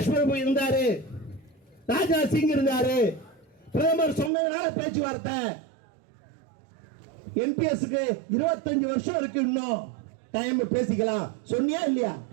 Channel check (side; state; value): left; drops out; at 4.3 s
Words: பிரபு இருந்தாரு, ராஜ்நாத் சிங் இருந்தாரு, பிரதமர் சொன்னதுனால பேச்சுவார்த்தை. என்பிஎஸ்க்கு 25 வருஷம் இருக்கு, இன்னும் டைம் பேசிக்கலாம். சொன்னியா இல்லையா?